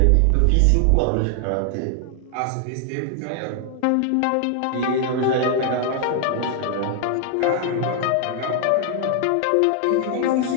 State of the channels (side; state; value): both; different; correlation 0.00